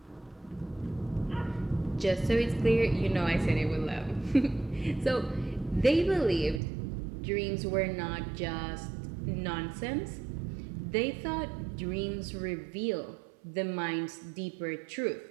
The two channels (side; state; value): left; drops out; at 6.6 s